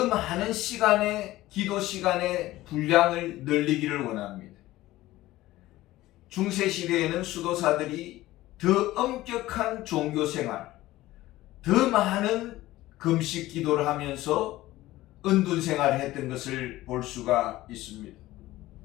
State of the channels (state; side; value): quieter; right; 16.7 dB